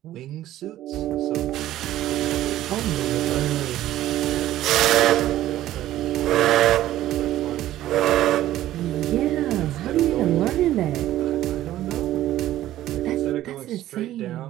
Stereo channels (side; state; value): left; quieter; 13.9 dB